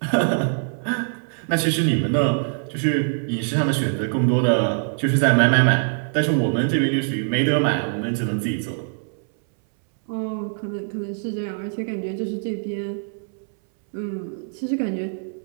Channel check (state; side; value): silent; left; 63 dB below the other